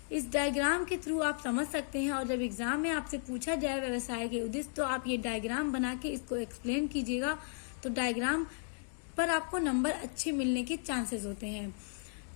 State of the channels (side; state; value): right; silent; digital silence